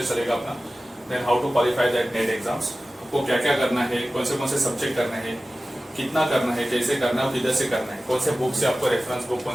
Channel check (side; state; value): both; normal; correlation 0.96